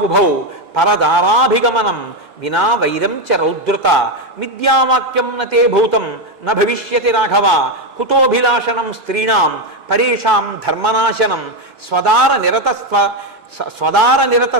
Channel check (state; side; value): normal; both; correlation 0.07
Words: పరదారాభిగమనం వినా వైరం చ రౌద్రత మిథ్యావాక్యం నతే భూతం న భవిష్యతి రాఘవ కుతోభిలాషణం స్త్రీణాం పరేషాం ధర్మనాశనం స్వదార